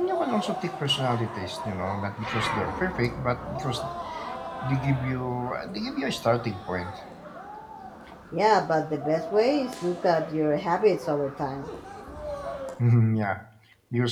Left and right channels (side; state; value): both; identical; correlation 1.00